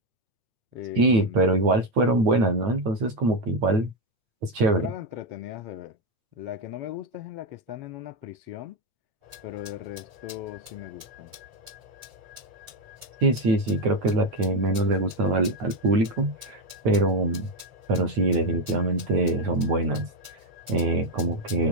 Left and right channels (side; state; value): left; late; 8.6 ms